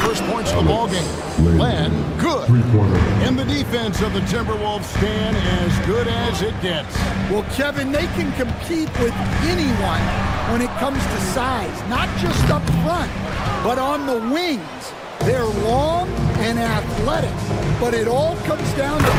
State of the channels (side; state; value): both; identical; correlation 1.00